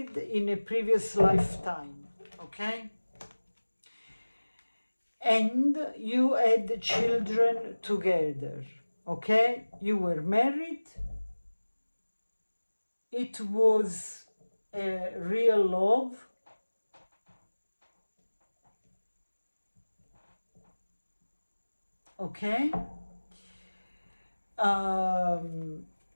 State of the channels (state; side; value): inverted; both; correlation -1.00